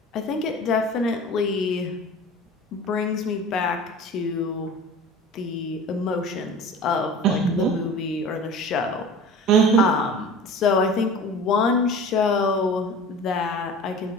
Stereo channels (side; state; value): both; normal; correlation 0.39